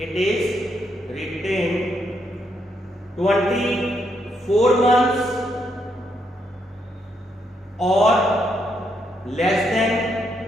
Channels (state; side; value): normal; both; correlation 0.77